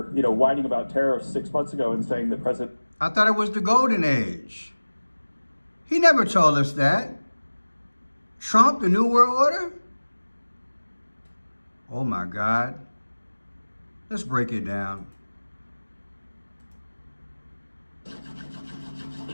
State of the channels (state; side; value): inverted; both; correlation -1.00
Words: whining about tariffs 6 months ago and saying that President. I thought it was the golden age. He never told us that. Trump, the New World Order? Oh my God. Let's break it down.